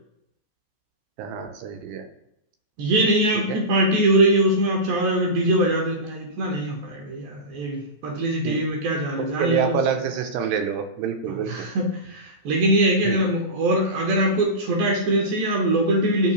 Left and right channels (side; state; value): left; late; 14 ms